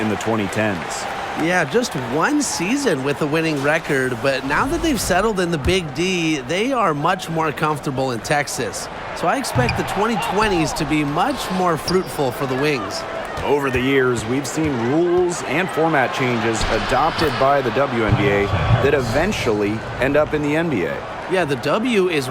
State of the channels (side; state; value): both; identical; correlation 1.00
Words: in the 2010s. Yeah, just one season with a winning record, but now that they've settled in the Big D, they are much more comfortable in Texas. So I expect the 2020s to be much more fruitful for the Wings. Over the years, we've seen rules and format changes adopted by the WNBA that eventually end up in the NBA. Yeah, the W is